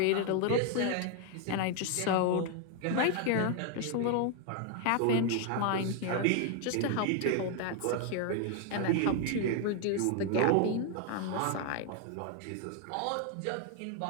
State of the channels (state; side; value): different; both; correlation 0.00